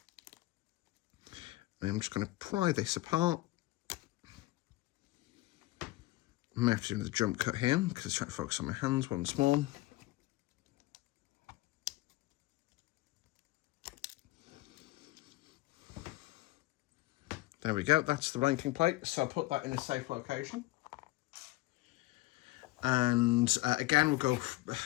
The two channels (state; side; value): quieter; right; 19.3 dB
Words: I'm just going to pry this apart. I may have to do another jump cut here because I'm trying to focus on my hands once more. There we go, that's the ranking plate. So I'll put that in a safe location. And again,